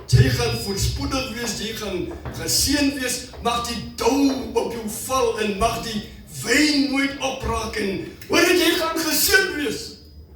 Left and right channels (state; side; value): identical; both; correlation 1.00